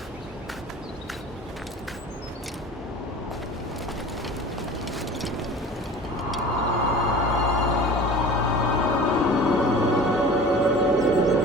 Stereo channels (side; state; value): both; normal; correlation 0.40